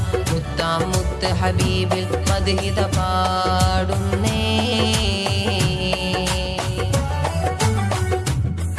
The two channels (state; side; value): identical; both; correlation 1.00